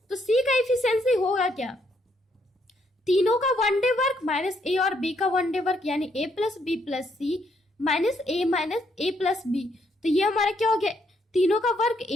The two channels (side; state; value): both; normal; correlation 0.73